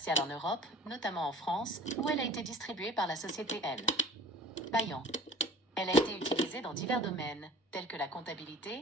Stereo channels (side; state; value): both; normal; correlation 0.43